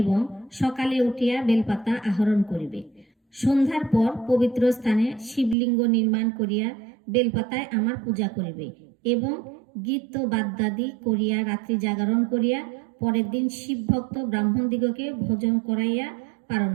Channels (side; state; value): left; drops out; at 5.6 s